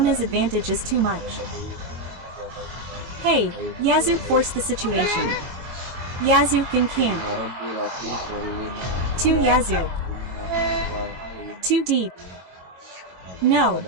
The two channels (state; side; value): late; left; 22 ms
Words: advantage is too much. Hey, Yazoo forced the situation. Yazoo can camp. Too Yazoo. Too deep. No,